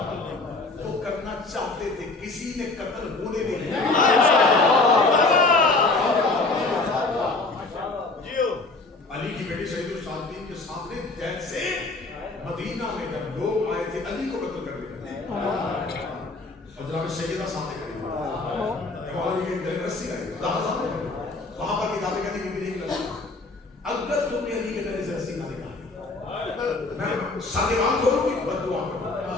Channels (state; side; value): quieter; right; 3.4 dB